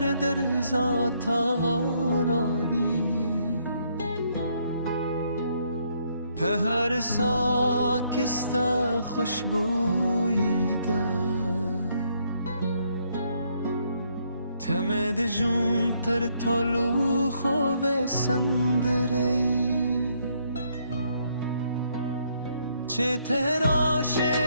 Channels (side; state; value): both; inverted; correlation -0.71